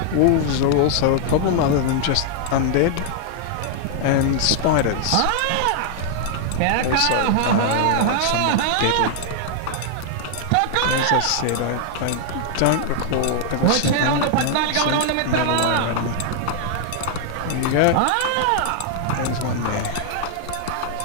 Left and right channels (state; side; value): different; both; correlation 0.00